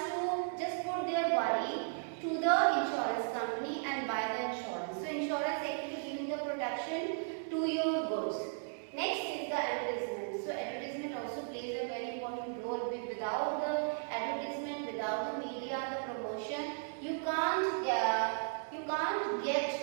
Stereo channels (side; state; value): left; silent; digital silence